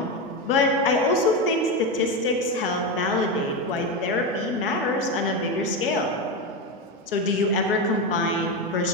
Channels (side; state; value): both; normal; correlation 0.14